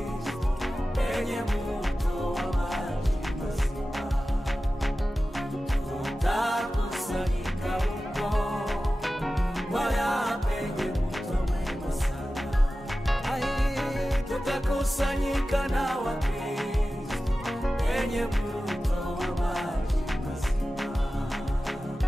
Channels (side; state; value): both; normal; correlation 0.95